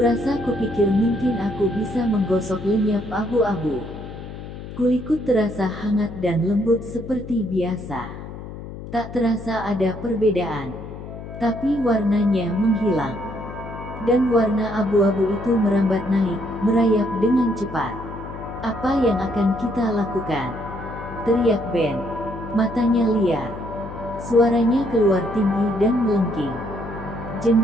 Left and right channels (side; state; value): left; noise; hum, 11 dB below the sound